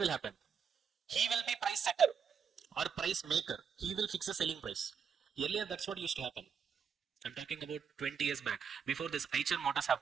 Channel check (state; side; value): quieter; left; 6.7 dB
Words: happen he will be price setter or price maker he will fix the selling price earlier that's what used to happen I'm talking about 20 years back before this Eicher Motors have